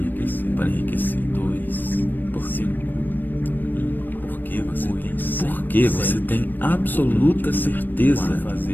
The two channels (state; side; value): late; right; 0.091 ms